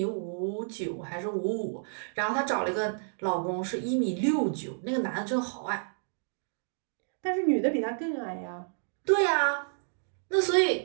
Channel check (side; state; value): left; silent; digital silence